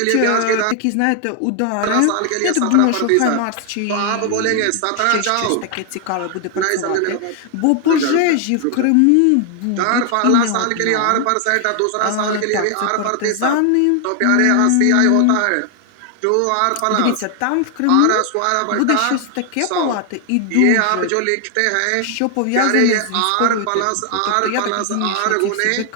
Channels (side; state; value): both; different; correlation 0.00